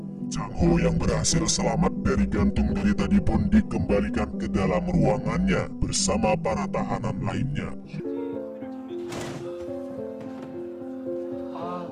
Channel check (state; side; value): identical; both; correlation 1.00